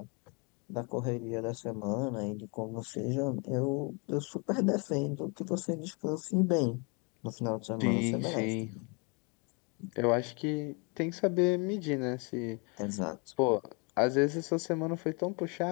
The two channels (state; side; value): quieter; right; 33.0 dB